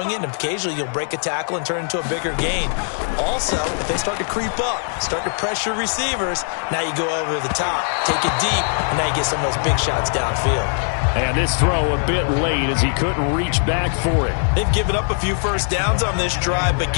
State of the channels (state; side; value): silent; right; 57 dB below the other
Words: it, and occasionally you'll break a tackle and turn it into a bigger gain. Also, if they start to creep up, start to pressure receivers, now you go over the top, take it deep, and now you get some of those big shots downfield. And this throw a bit late as he couldn't reach back for it. They've given up a few first downs on this drive, but